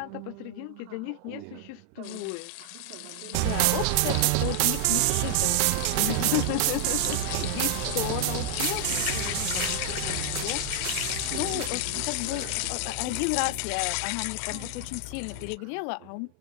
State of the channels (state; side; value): different; both; correlation -0.01